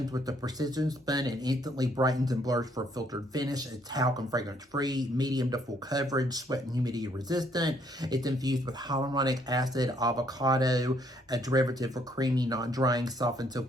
with the precision spun and instantly brightens and blurs for a filtered finish. It's talc and fragrance free, medium to full coverage, sweat and humidity resistant. It's infused with hyaluronic acid, avocado, a derivative for creamy, non-drying, soft and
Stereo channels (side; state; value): both; normal; correlation 0.67